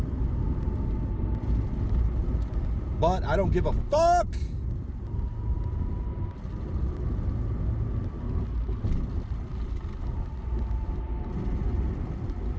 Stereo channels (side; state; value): both; identical; correlation 1.00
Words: But I don't give a fuck.